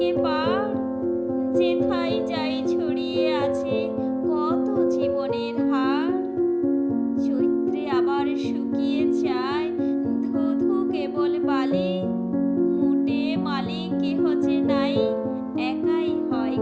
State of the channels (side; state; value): both; identical; correlation 1.00